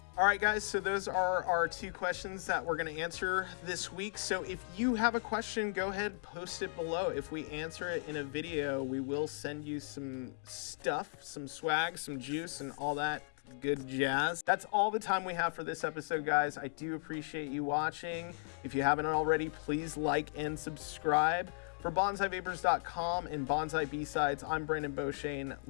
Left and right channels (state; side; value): silent; right; digital silence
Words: All right, guys, so those are our 2 questions that we're going to answer this week. So if you have a question, go ahead, post it below. If we answer it in a video, we will send you some stuff, some swag, some juice, and all that good jazz. That's all the time we have for this episode, guys. I do appreciate you watching. If you haven't already, please like and subscribe. For BanzaiVapors.com and Banzai B-Sides, I'm Brandon Beauchesne.